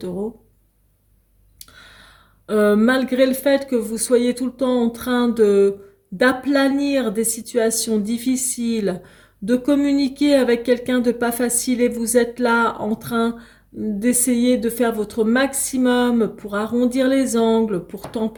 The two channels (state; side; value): identical; both; correlation 1.00